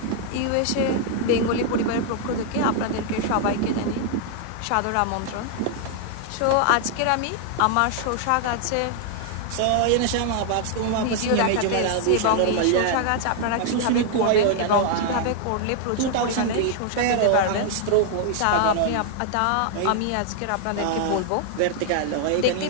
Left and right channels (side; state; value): both; different; correlation 0.00